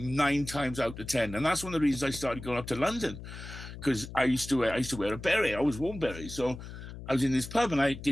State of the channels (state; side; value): noise; left; hum, 12 dB below the sound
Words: times out of 10. And that's one of the reasons I started going up to London, because I used to wear a beret. I always wore beret. So I was in this pub and I